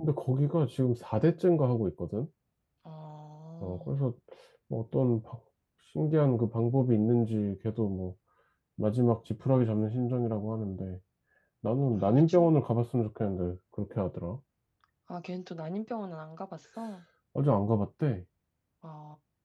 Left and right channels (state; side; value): identical; both; correlation 1.00